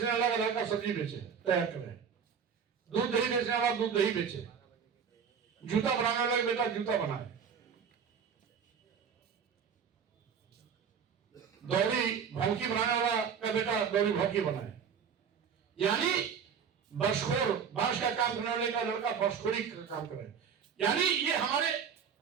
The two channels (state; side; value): quieter; left; 7.1 dB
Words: वाला का लड़का सब्जी बेचे तैयार करे, दूध दही बेचने वाला दूध दही बेचे, जूता बनाने वाला का बेटा जूता बनाए, दौरी भौंकी बनाने वाला का बेटा दौरी भौंकी बनाए। यानी बसखोर, बांस का काम करने वाले का लड़का बसखोरी का काम करे। यानी ये हमारे